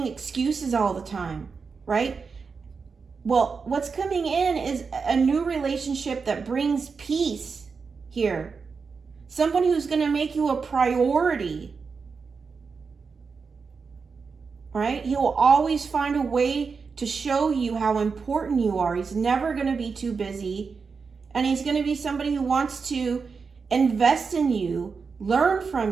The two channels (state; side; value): quieter; left; 5.2 dB